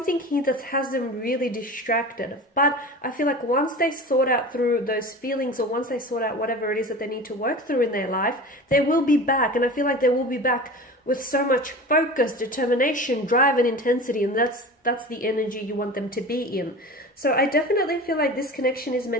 here that has them really distracted. But I feel like once they sort out through those feelings, or once they sort out whatever it is that they need to work through in their life, they will be back. And I feel like they will be back with so much focus, determination, drive, and intensity. And that's the energy you want them to be in. So I definitely feel like this connection is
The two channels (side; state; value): both; normal; correlation 0.34